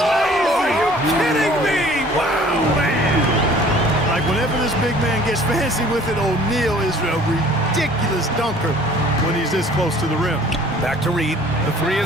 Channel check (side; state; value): both; normal; correlation 0.52